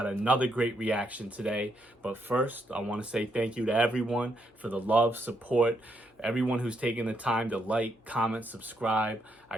another great reaction today. But first, I want to say thank you to everyone for the love, support, everyone who's taken the time to like, comment, subscribe. I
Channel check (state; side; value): normal; both; correlation 0.76